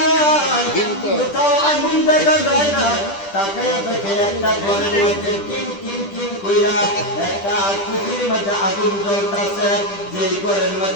কোথাও আগুন দেখা যায় না। তাকাইয়া দেখে একটা ঘরের মধ্যে টিম টিম টিম কইরা করিয়া একটা কুঠির মধ্যে আগুন জ্বলতেছে, যে ঘরের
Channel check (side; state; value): right; late; 10 ms